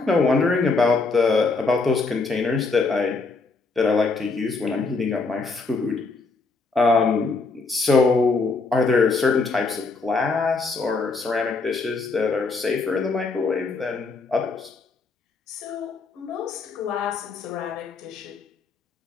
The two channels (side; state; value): right; quieter; 4.0 dB